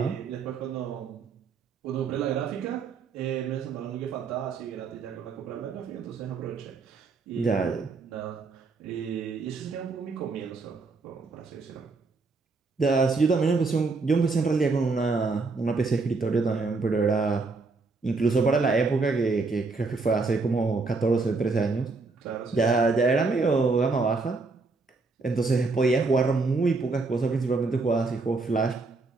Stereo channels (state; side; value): quieter; left; 4.0 dB